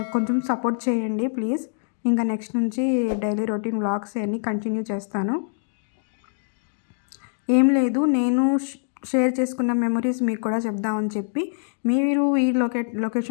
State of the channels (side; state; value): right; silent; digital silence